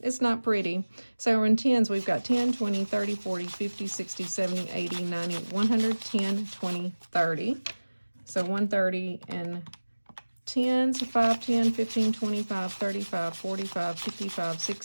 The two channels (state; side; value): inverted; both; correlation -1.00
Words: not pretty. So in 10s, we've got 10, 20, 30, 40, 50, 60, 70, 80, 90, 100, 10, 20, 30. So 130 in 10s, 5, 10, 15, 25, 35, 45, 55,